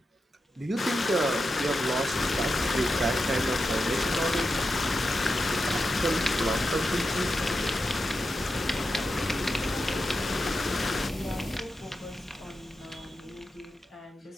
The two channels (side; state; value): both; normal; correlation 0.89